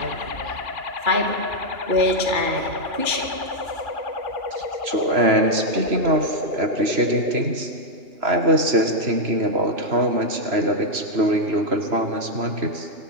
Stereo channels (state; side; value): late; left; 3.0 ms